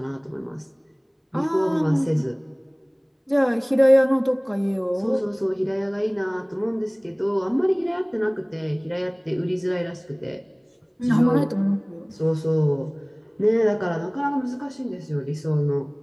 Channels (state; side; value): identical; both; correlation 1.00